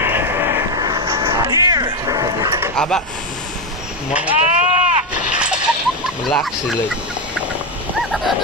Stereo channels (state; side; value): normal; both; correlation 0.10